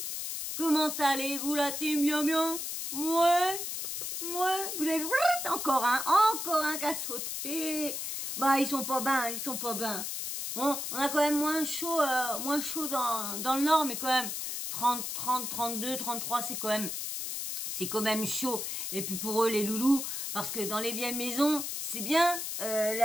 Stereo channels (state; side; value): noise; left; hiss, 4 dB below the sound